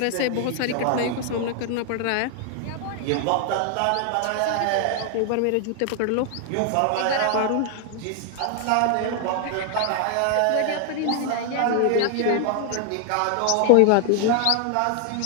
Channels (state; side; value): different; both; correlation 0.00